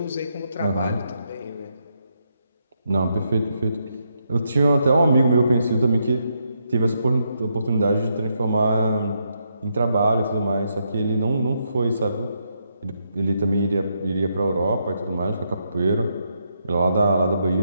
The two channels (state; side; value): inverted; both; correlation -0.80